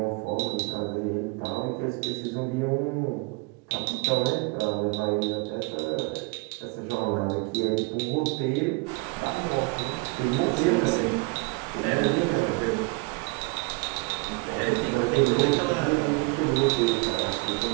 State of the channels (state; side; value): quieter; left; 28.0 dB